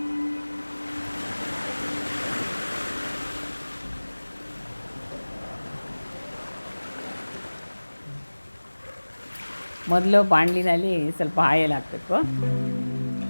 ಮೊದಲು ಬಾಣಲಿನಲ್ಲಿ ಸ್ವಲ್ಪ ಆಯಿಲ್ ಹಾಕಬೇಕು.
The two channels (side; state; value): both; inverted; correlation -1.00